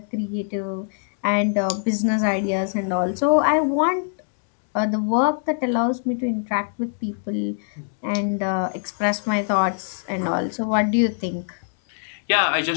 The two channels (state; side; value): silent; right; 63 dB below the other